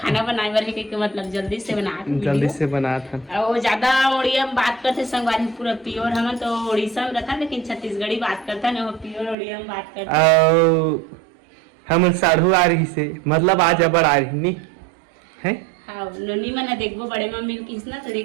बनाए बर के मतलब जल्दी से बनाता वो ज्यादा उड़िया में बात करते संगवारी पूरा प्योर। हम तो उड़ीसा में रहता लेकिन छत्तीसगढ़ी बात करता ना, वो प्योर उड़िया में बात करता। हम साढ़ू आ रही से मतलब आज अबर आ रही नहीं है। हाँ नोनी मना देखबो बड़े मम्मी की ना तो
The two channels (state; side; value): drops out; left; at 9.3 s